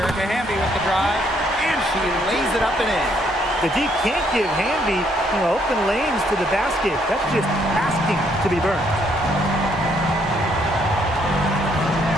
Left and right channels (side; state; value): both; normal; correlation 0.70